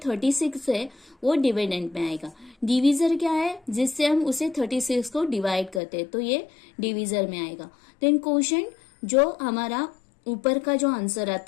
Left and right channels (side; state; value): right; drops out; at 5.8 s